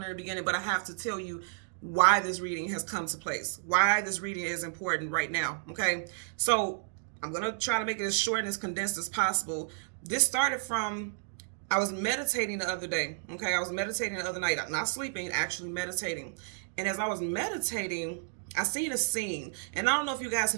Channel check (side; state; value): left; silent; digital silence